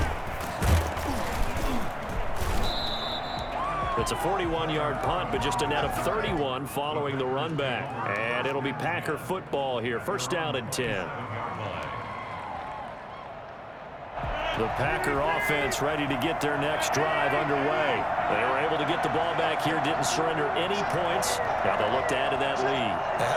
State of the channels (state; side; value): identical; both; correlation 1.00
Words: It's a 41-yard punt, but just a net of 31 following the run back. And it'll be Packer football here. 1st down and 10. The Packer offense ready to get their next drive underway. They were able to get the ball back here, didn't surrender any points. Now they'll look to add to that lead. Now,